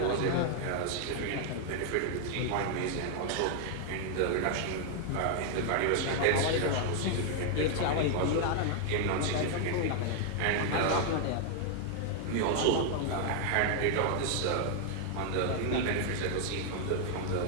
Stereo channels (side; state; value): both; different; correlation 0.00